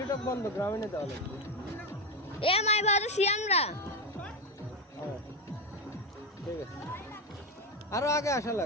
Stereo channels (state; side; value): normal; both; correlation 0.12